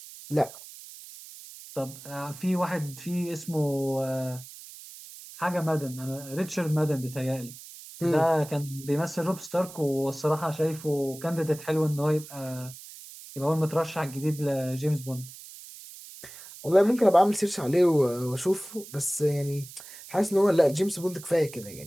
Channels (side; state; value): right; noise; hiss, 16 dB below the sound